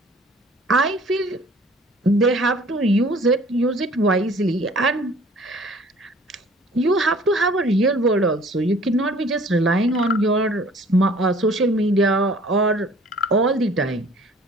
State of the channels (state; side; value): normal; both; correlation 0.52